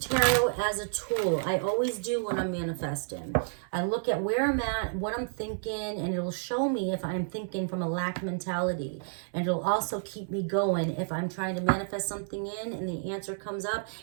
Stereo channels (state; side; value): silent; left; 58 dB below the other